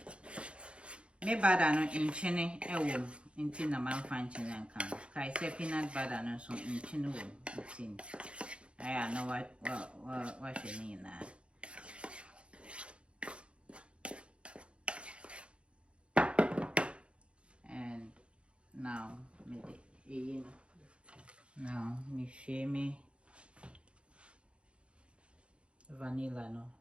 Me butter no in chine ewo inti na man fan chine kan. Kai say peanut butter no so in chine wo inti. I know what you mean na. And now me share me vanilla no.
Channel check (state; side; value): late; left; 0.058 ms